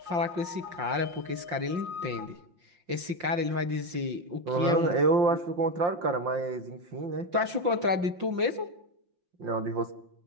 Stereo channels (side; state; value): left; late; 5.7 ms